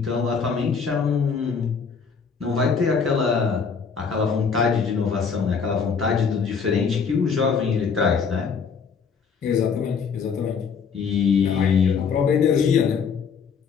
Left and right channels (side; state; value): right; quieter; 6.0 dB